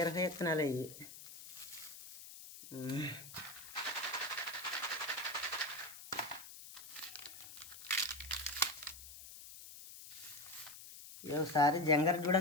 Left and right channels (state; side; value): noise; left; hiss, 14 dB below the sound